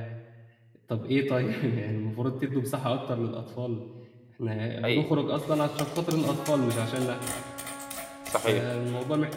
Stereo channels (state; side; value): identical; both; correlation 1.00